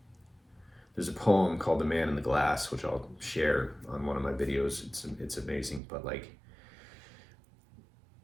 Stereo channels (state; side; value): drops out; left; at 5.8 s